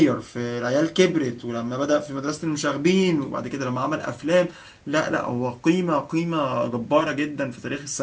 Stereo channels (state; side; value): identical; both; correlation 1.00